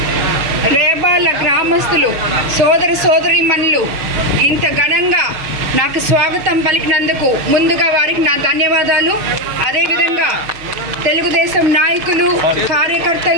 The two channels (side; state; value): left; late; 6.6 ms